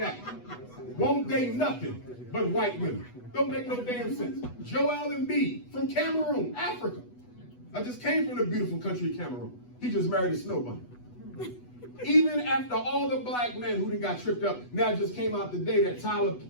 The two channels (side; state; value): right; late; 8.1 ms